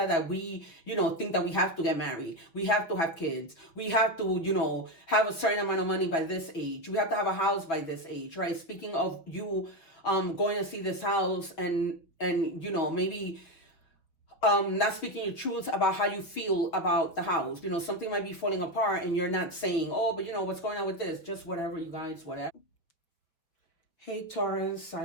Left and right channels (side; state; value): right; late; 6.0 ms